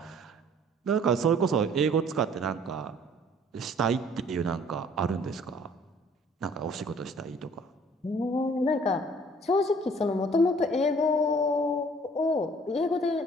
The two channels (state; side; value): normal; both; correlation 0.56